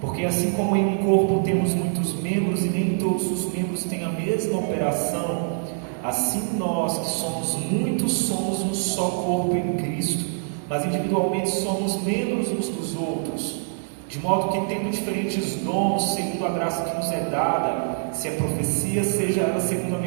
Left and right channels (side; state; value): left; silent; 62 dB below the other